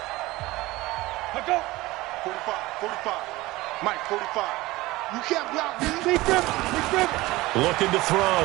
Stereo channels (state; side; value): quieter; left; 19.5 dB